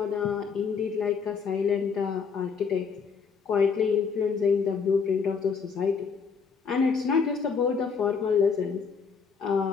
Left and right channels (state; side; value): quieter; right; 5.8 dB